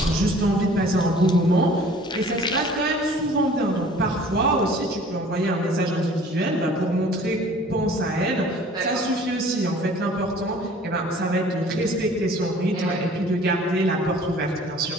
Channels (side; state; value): both; normal; correlation 0.50